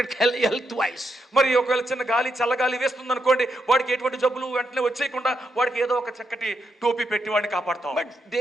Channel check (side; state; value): both; normal; correlation 0.81